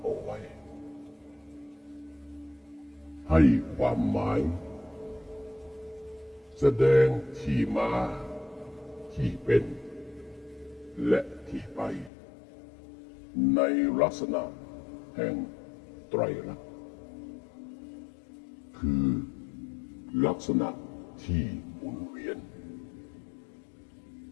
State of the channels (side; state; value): right; drops out; at 12.1 s